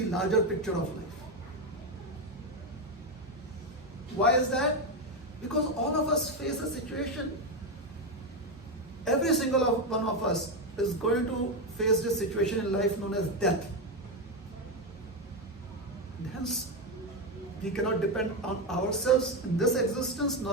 larger picture of life. Why is that? Because all of us face a situation. Every single one of us is going to face this situation in life known as death. And hence, we cannot depend on ourselves in this existence,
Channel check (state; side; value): normal; both; correlation 0.09